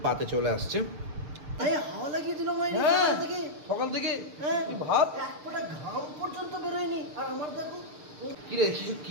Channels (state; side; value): late; left; 6.4 ms